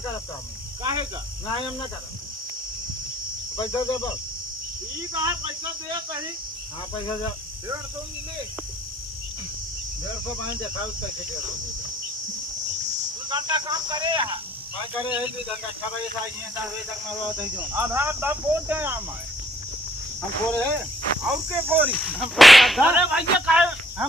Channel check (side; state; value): both; normal; correlation 0.63